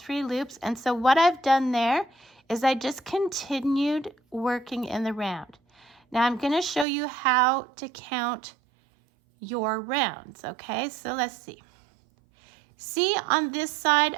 loops. And so what I've done there is I just continued working in the round. Now I'm going to show you how to count your rounds, okay? So let's see. See, on this side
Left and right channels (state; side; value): drops out; left; at 6.9 s